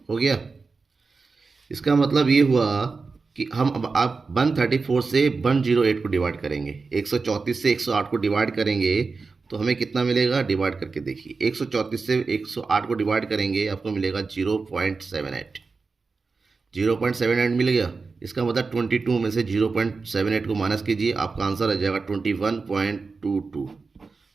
हो गया। इसका मतलब ये हुआ कि हम अब आप 134 से 108 को डिवाइड करेंगे, 134 से 108 को डिवाइड करेंगे तो हमें कितना मिलेगा, डिवाइड करके देखिए। 134 से 108 को डिवाइड करेंगे आपको मिलेगा 0.78, 0.78 मिल गया। इसका मतलब 22 में से 0.78 को माइनस कीजिए, आपका आंसर आ जाएगा 21.22।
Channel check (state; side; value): quieter; left; 4.4 dB